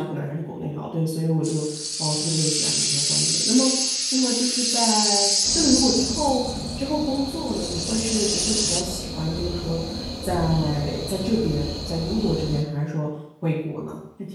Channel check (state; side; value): identical; both; correlation 1.00